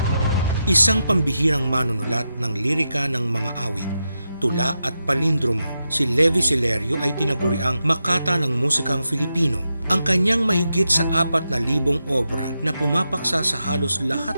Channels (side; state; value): both; inverted; correlation -0.87